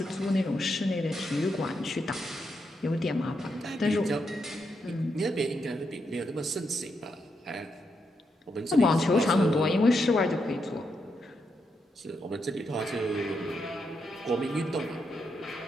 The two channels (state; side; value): normal; both; correlation 0.82